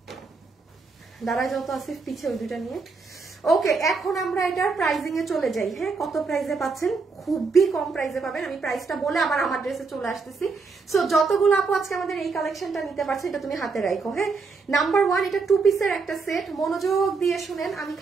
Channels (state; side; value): quieter; left; 4.5 dB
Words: দাঁড়ায় যাও তো আসিফ, পিছে ওই দুটা নিয়ে। ওকে, এখন আমরা এটার প্রাইজিং এ চলে যাই। হ্যাঁ, কত প্রাইসে পাচ্ছেন? খুবই কম প্রাইসে পাবেন। আমি প্রাইসটা বলে আবার আমার ড্রেসে চলে আসতেছি। সো যতগুলো আপু আজকে আমাদের এই কালেকশনটা নিতে পারছে, এটা তুমি হাতে রাখো। হ্যাঁ, নাম্বার 1 এটা 2 পিসের একটা সেট। মনোযোগ দিয়ে শুনেন, আমি